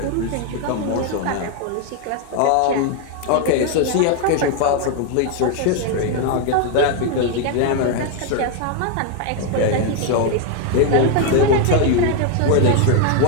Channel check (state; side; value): different; both; correlation 0.01